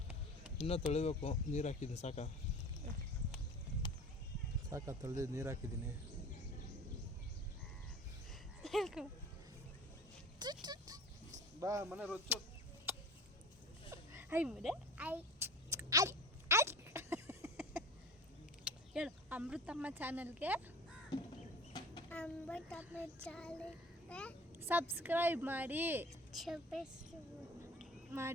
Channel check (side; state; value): both; normal; correlation 0.39